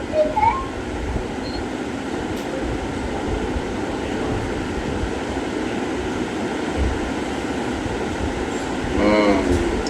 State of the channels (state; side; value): identical; both; correlation 1.00